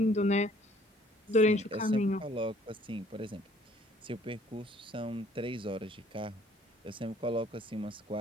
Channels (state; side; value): normal; both; correlation 0.59